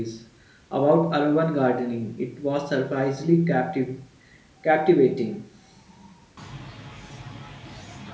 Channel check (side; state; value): both; identical; correlation 1.00